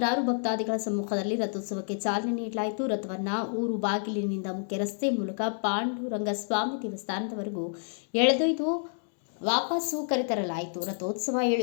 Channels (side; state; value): right; silent; digital silence